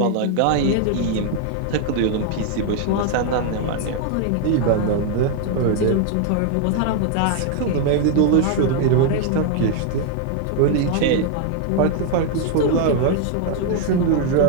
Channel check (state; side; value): different; both; correlation 0.00